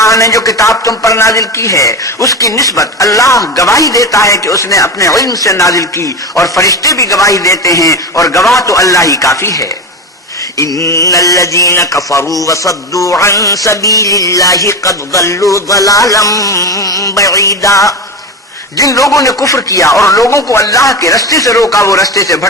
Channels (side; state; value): both; normal; correlation 0.21